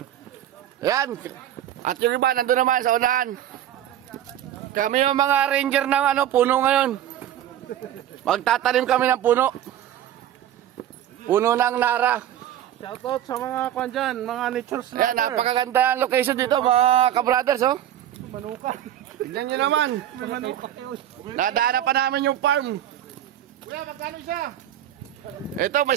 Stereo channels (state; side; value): quieter; left; 11.5 dB